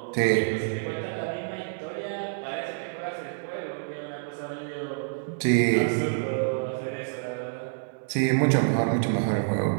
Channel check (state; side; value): silent; left; digital silence